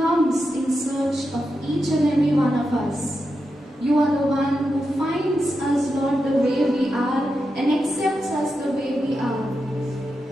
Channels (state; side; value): normal; both; correlation 0.88